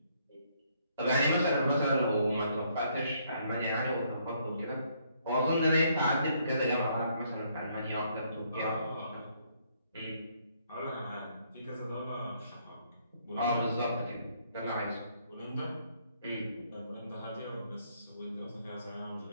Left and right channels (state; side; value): inverted; both; correlation -0.69